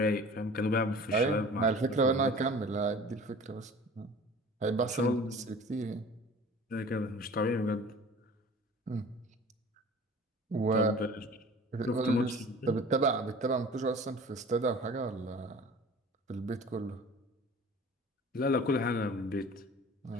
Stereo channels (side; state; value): both; normal; correlation 0.43